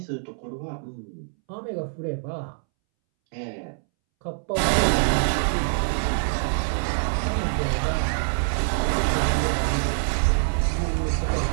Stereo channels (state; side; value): silent; left; 62 dB below the other